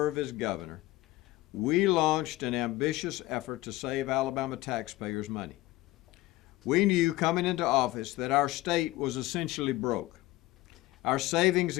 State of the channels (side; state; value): right; quieter; 18.4 dB